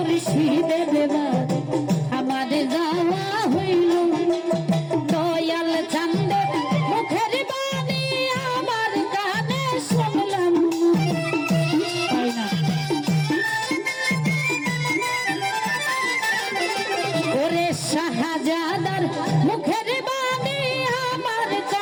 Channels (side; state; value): both; identical; correlation 1.00